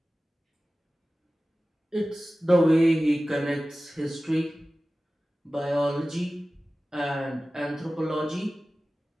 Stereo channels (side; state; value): both; normal; correlation 0.96